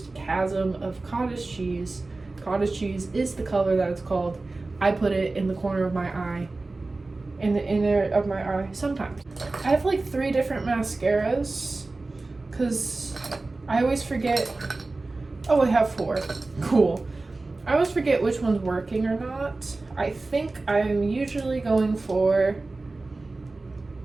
a chasm of cottage cheese. Cottage cheese is the color that it's called. I put it in the corner of my eye, in the inner of my eye sometimes. I have like 3 different mascaras because I always forget. Oh, I have 4. Cool. I always forget which one's working or not. I think I'm usually going for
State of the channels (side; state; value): left; quieter; 3.3 dB